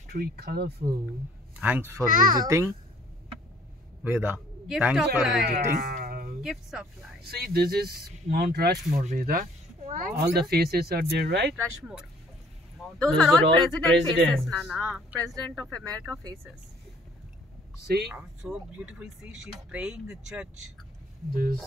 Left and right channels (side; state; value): both; normal; correlation 0.57